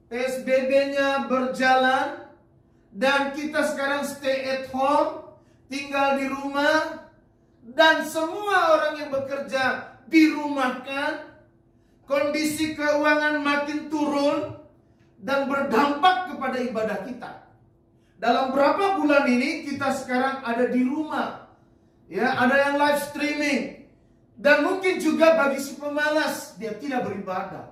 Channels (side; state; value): both; identical; correlation 1.00